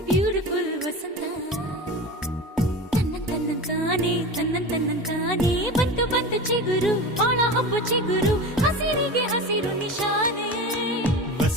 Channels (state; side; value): normal; both; correlation 0.29